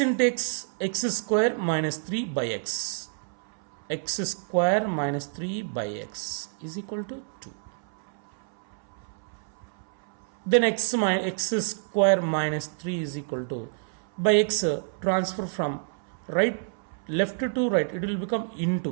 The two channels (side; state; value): left; silent; 60 dB below the other